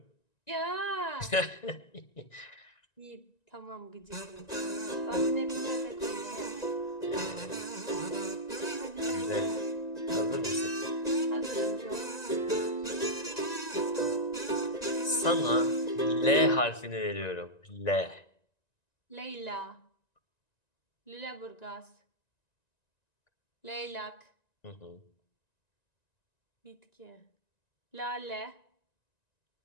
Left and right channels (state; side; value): late; right; 1.9 ms